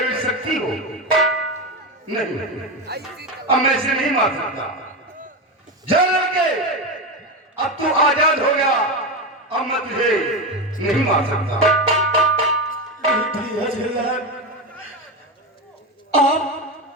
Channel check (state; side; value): normal; both; correlation 0.16